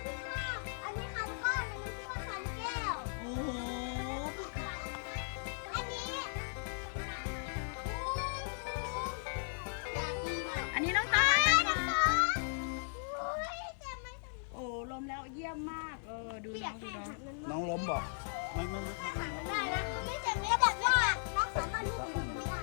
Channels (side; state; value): right; silent; digital silence